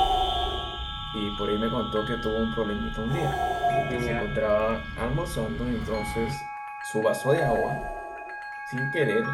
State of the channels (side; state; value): both; identical; correlation 1.00